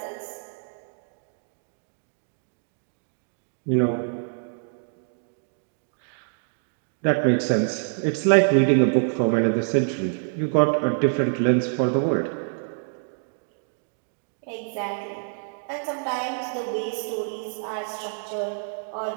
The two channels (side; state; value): left; silent; digital silence